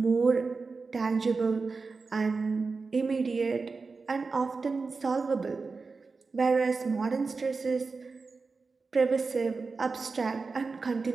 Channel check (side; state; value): left; quieter; 4.3 dB